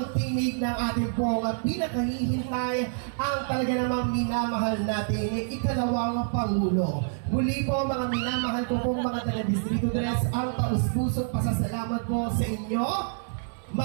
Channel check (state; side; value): silent; left; 60 dB below the other